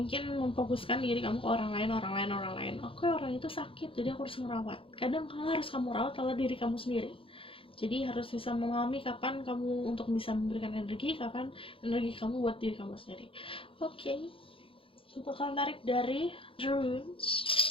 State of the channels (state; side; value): late; right; 0.26 ms